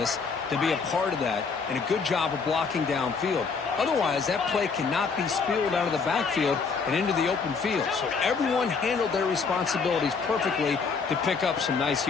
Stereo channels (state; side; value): quieter; right; 5.1 dB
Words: to be a part of that and a good job of blocking downfield. Otherwise, that play cannot be spilled out of the backfield and into the open field. So everyone handled their responsibilities perfectly to pick up some nice